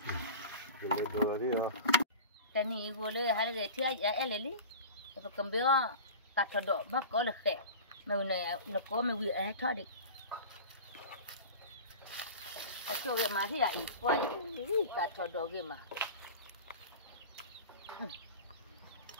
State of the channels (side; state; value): both; inverted; correlation -0.34